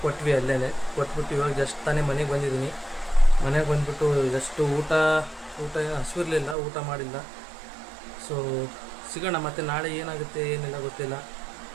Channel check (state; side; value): drops out; left; at 6.6 s